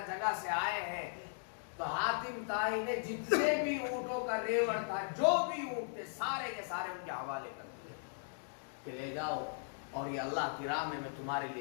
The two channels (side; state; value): right; silent; digital silence